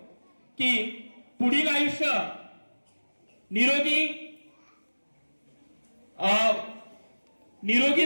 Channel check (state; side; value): inverted; both; correlation -1.00